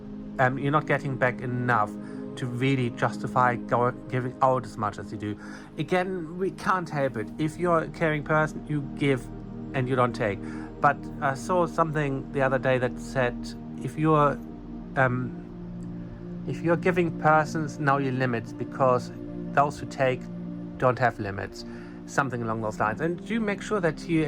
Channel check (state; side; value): identical; both; correlation 1.00